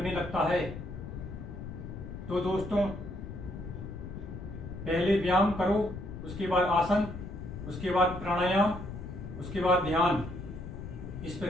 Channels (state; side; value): noise; left; rumble, 9 dB below the sound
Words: लगता है। तो दोस्तों, पहले व्यायाम करो, उसके बाद आसन, उसके बाद प्राणायाम, उसके बाद ध्यान। इस